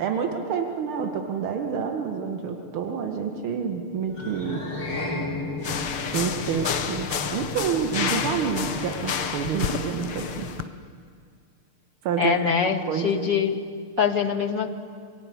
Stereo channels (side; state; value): left; late; 6.7 ms